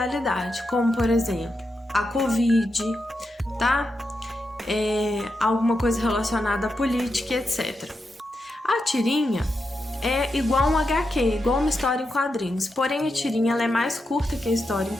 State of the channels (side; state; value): both; normal; correlation 0.86